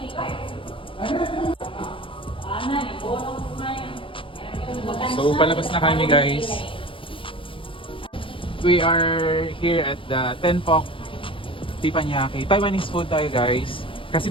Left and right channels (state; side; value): late; right; 0.25 ms